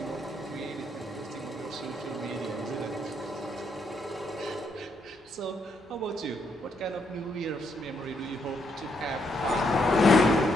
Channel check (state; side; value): normal; both; correlation 0.76